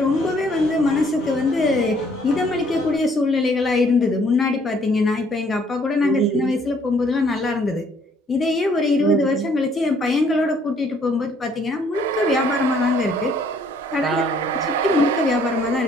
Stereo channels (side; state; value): both; normal; correlation 0.63